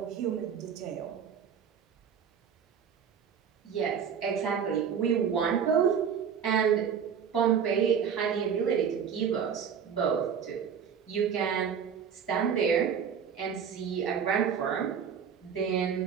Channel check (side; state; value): left; quieter; 7.5 dB